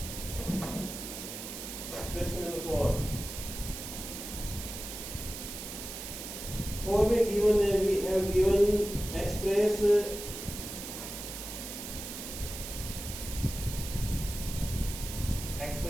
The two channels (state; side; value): noise; right; hiss, 8 dB below the sound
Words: क्वेश्चन नंबर 4 में गिवन है, we have given express